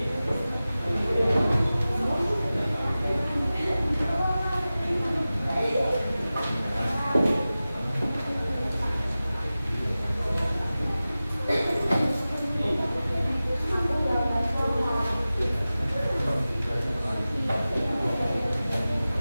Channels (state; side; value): inverted; both; correlation -0.96